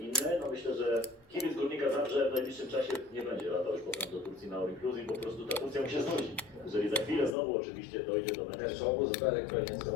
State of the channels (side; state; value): right; drops out; at 7.4 s